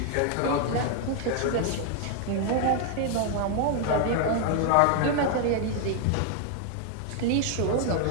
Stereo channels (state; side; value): different; both; correlation 0.00